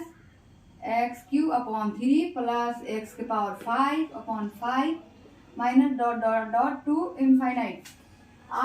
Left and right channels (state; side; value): identical; both; correlation 1.00